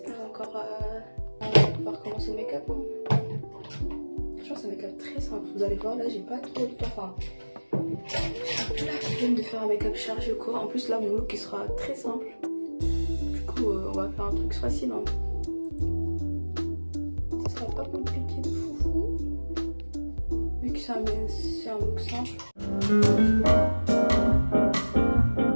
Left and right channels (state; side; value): inverted; both; correlation -1.00